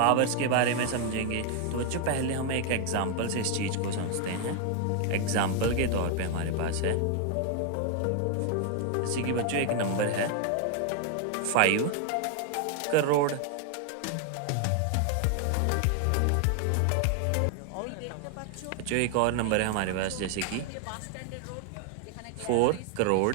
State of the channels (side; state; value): both; different; correlation 0.00